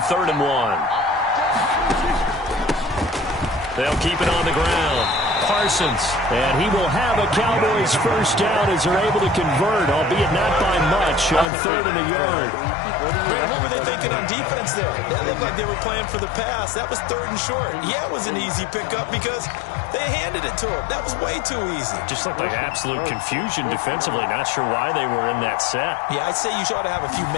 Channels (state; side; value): drops out; right; at 11.5 s